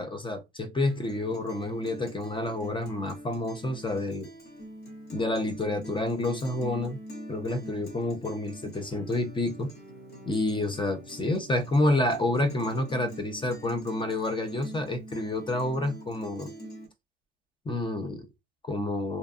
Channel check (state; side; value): normal; both; correlation 0.62